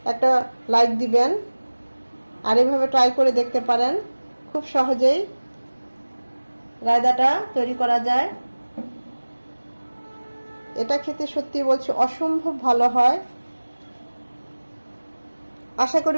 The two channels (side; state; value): both; inverted; correlation -1.00